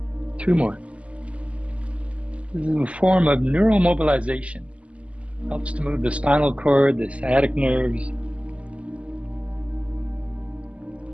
Two more. This is a form of neuromobilization. Helps to move the spinal cord, the sciatic nerves.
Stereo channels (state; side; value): late; left; 0.061 ms